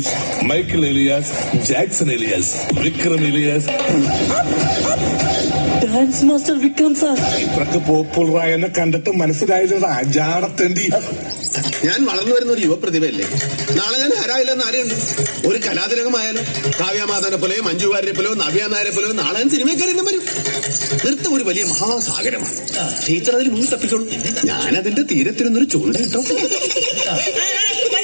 Michael alias Jackson alias Vikram alias. Dance master Vikram sir. ഇത്രക്ക് പോപ്പുലറായ എന്നെ കണ്ടിട്ട് മനസ്സിലായില്ലടാ ജാടത്തേണ്ടി. ഞാൻ വളർന്നു വരുന്ന ഒരു യുവപ്രതിഭയല്ലേ. നാളെ ഞാൻ ആരായില്ലെന്ന് ആരെയുണ്ട്. ഒരു കലാതിലകമായാലും കാവ്യമാധവനെ പോലെയോ മഞ്ജു വാര്യരെ പോലെയോ നവ്യ നായരെ പോലെയോ നാളെ ഞാൻ സിനിമക്കാരെല്ലാം വരും. നൃത്തം ഒരു വലിയ മഹാസാഗരമാണ്. ടീച്ചർ അതിൽ മുന്നിൽ തപ്പിക്കോളൂ. ഞാനതിന്റെ തീരത്തിരുന്നൊരു ചൂണ്ട കിട്ടോ.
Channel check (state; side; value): inverted; both; correlation -1.00